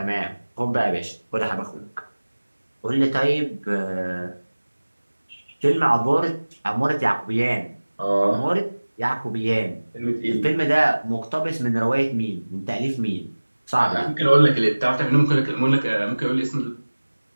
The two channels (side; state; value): both; inverted; correlation -1.00